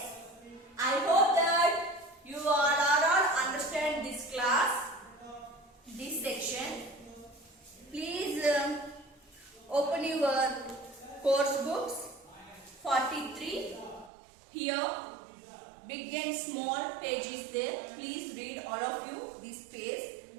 I hope that you all understand this class, this section. Please open your course books 43. Here big and small page is there. Please read all of you this page,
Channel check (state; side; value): drops out; left; at 14.1 s